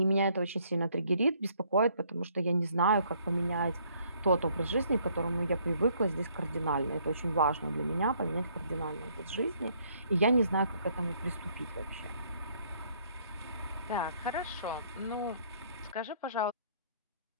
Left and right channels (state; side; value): inverted; both; correlation -0.65